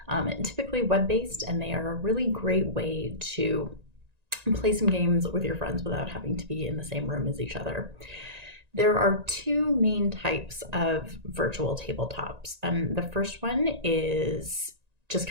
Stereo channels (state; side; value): late; left; 1.9 ms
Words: typically web-based, and they are a really great way to play some games with your friends without having to be in the same room as each other. There are two main types of virtual tabletops. The first one is just